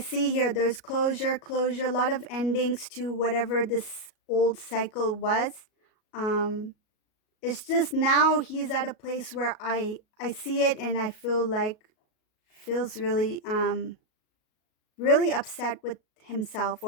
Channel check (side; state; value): right; late; 37 ms